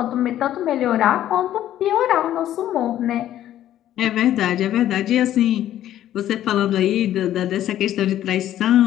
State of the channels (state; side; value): quieter; right; 12.2 dB